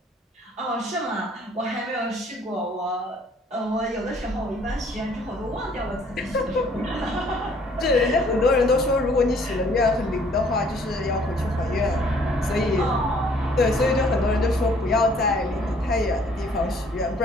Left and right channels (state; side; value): normal; both; correlation 0.60